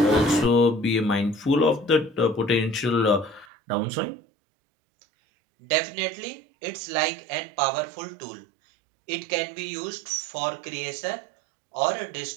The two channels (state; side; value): drops out; left; at 3.5 s